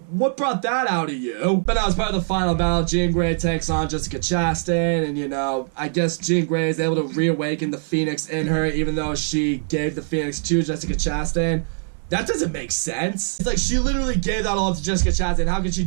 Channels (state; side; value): silent; left; digital silence